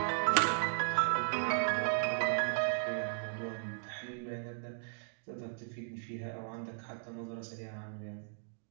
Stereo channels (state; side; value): silent; left; digital silence